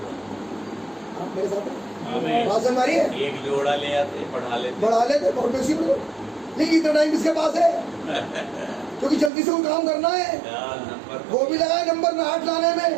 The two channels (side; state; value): left; drops out; at 9.3 s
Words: आप मेरे साथ हैं? बात समझ आ रही है? एक जोड़ा ले आते, बढ़ा लेते बहुत बेसी में। लेकिन इतना टाइम किसके पास है? क्योंकि जल्दी से वो काम करना है, वो भी लगाए नंबर 8 लाने